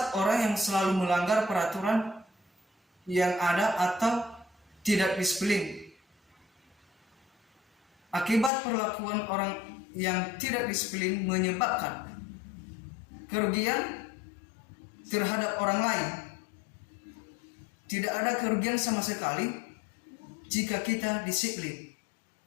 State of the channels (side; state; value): right; drops out; at 8.5 s